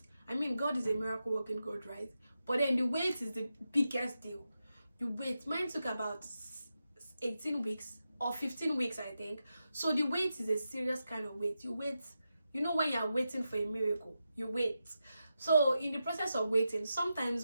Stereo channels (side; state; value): both; inverted; correlation -0.89